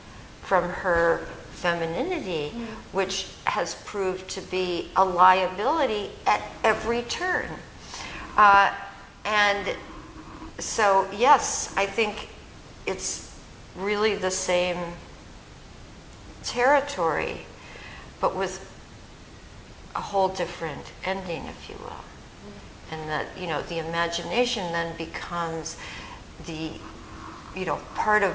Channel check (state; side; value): identical; both; correlation 1.00